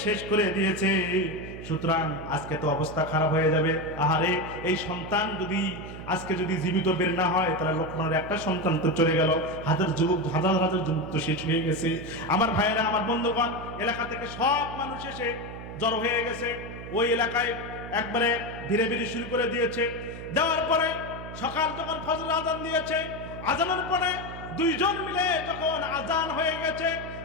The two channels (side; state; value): right; noise; hum, 11 dB below the sound